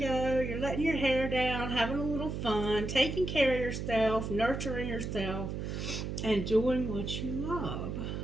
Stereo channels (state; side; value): noise; right; hum, 4 dB below the sound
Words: you're letting your hair down, having a little fun, taking care of yourself, nurturing yourself, and doing what you love.